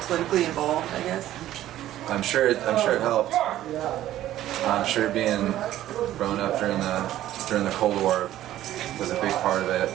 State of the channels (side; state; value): left; quieter; 13.4 dB